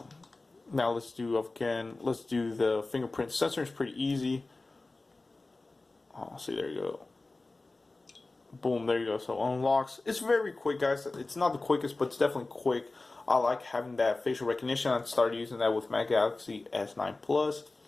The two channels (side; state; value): right; quieter; 3.3 dB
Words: let's do the fingerprint sensor. It's pretty easy. Oh, see, there you go. Boom, there you go. So unlocks. It's very quick, guys. It's not the quickest, but it's definitely quick. I like having that facial recognition. I started using that with my Galaxy S9 Plus.